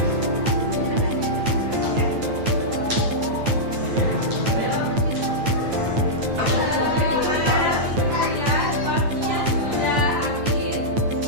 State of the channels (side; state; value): left; late; 9.0 ms